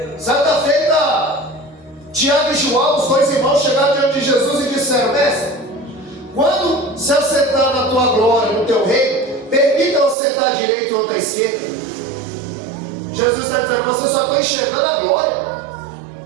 Certa feita, Tiago e João, os dois irmãos, chegaram diante de Jesus e disseram: mestre, quando se assentar na tua glória, no teu reino, permita-o sentar à direita ou à esquerda. Jesus está dizendo: vocês só estão enxergando a glória,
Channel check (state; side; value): drops out; left; at 10.2 s